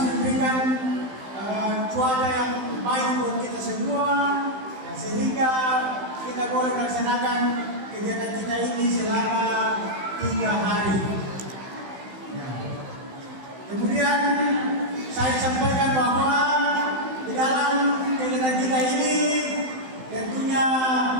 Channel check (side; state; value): left; late; 15 ms